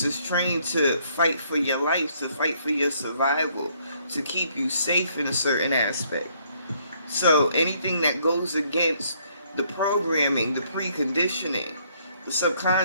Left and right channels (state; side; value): inverted; both; correlation -0.67